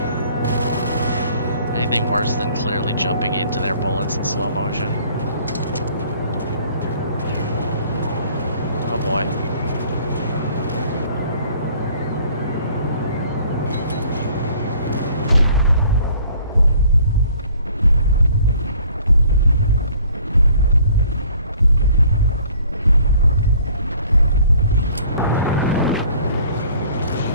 Anything worse than clearly jumping into their bullets in slow motion. Oh boy.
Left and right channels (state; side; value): inverted; both; correlation -0.56